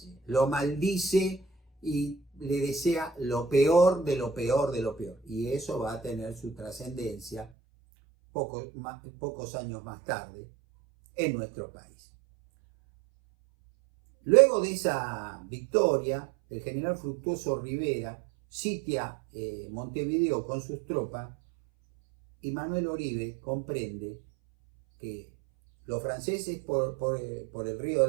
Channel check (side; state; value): left; drops out; at 7.5 s